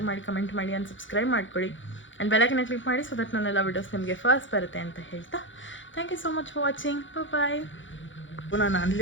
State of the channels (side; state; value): right; late; 0.56 ms